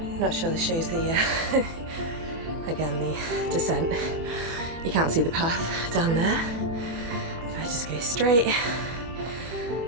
Not sure this shows the, again, the descent. You can't see the path down there. If I just go straight,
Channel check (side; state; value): left; late; 24 ms